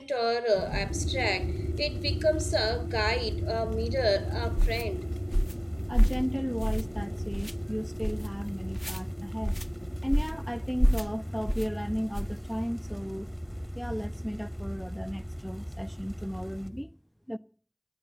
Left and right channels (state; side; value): identical; both; correlation 1.00